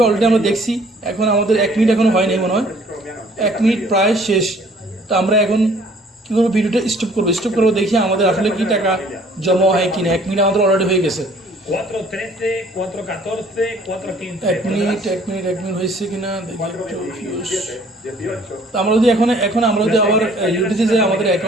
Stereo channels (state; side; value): normal; both; correlation 0.57